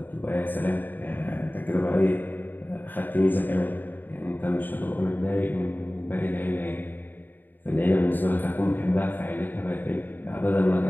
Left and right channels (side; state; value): right; late; 0.090 ms